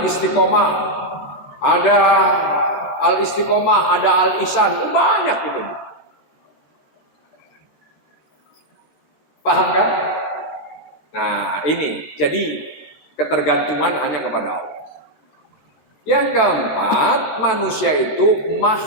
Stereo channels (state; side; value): late; right; 14 ms